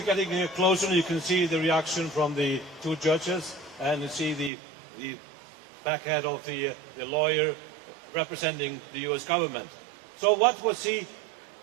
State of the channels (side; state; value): left; drops out; at 4.5 s